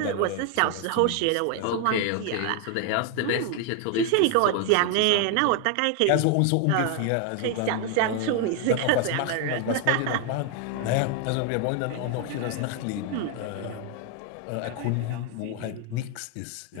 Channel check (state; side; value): different; both; correlation 0.01